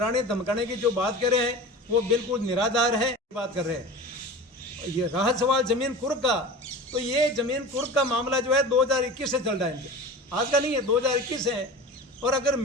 धमकाने की जो बात कर रहे हैं वो बिल्कुल निराधार है। बात कर रहे हैं ये रहा सवाल ज़मीन कुर्क का, तो ये ज़मीन कुर्क का मामला जो है 2021 से चल रहा है, इनके आज का नहीं है, 2021 है। और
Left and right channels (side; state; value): both; normal; correlation 0.34